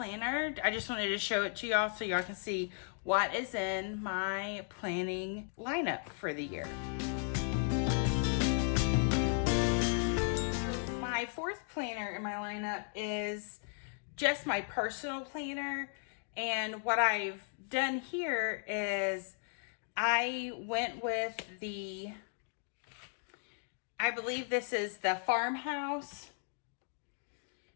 I just wanted to show it to y'all so y'all can see what is in my planning lineup for the year. My fourth planner in my lineup is just my personal planner. And what I've done here is I went with I believe this is the Farmhouse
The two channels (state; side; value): silent; right; 54 dB below the other